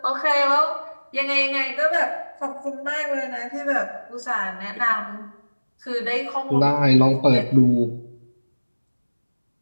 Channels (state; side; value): inverted; both; correlation -1.00